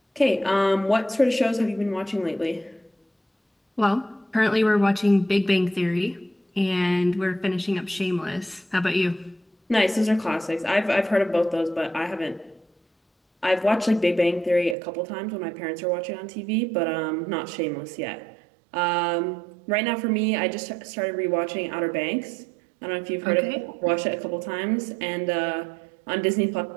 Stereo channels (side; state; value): left; drops out; at 14.8 s